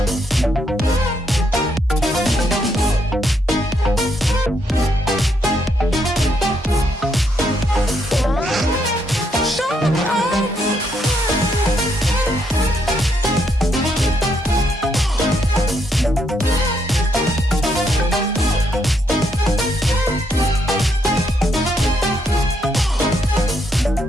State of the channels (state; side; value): normal; both; correlation 0.76